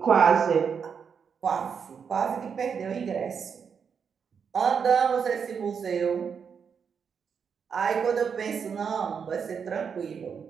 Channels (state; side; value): quieter; left; 6.6 dB